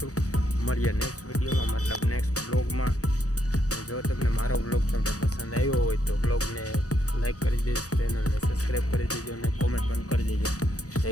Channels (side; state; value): right; late; 0.66 ms